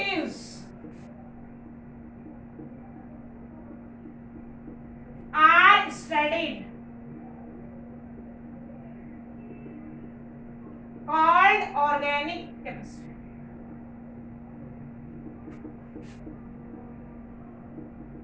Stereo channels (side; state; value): both; identical; correlation 1.00